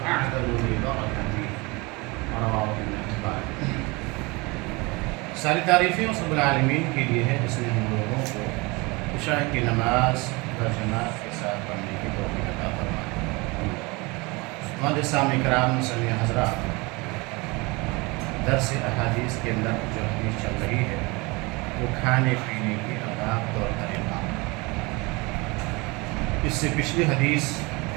أعدل لبركته رواه ابن حبان۔ ساری تعریفیں اس رب العالمین کے لیے ہے جس نے ہم لوگوں کو عشاء کی نماز جماعت کے ساتھ پڑھنے کی توفیق عطا فرمائی۔ سامع کرام مسلم حضرات، درس احادیث کے اندر جو حدیث چل رہی ہے وہ کھانے پینے کی آداب طور طریقہ۔ اس سے پچھلی حدیث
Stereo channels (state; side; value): quieter; left; 25.7 dB